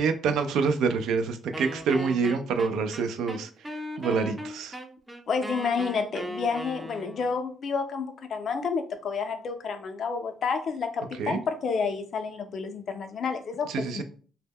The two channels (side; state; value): both; normal; correlation 0.66